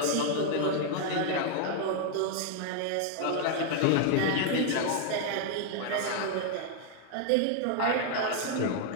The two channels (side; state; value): both; different; correlation 0.00